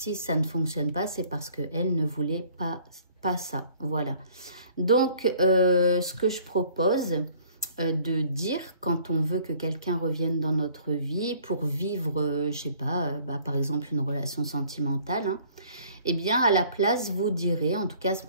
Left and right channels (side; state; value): both; inverted; correlation -0.56